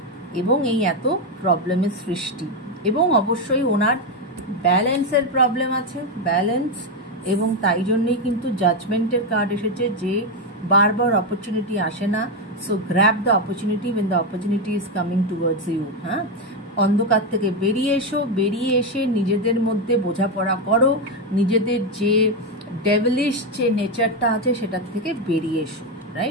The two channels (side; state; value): both; normal; correlation 0.07